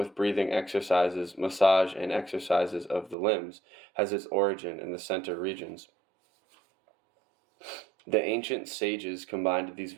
breathing exercises, massage, and exercises of the limbs has its origin in the center regions. The ancient sages combined these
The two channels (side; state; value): left; drops out; at 3.2 s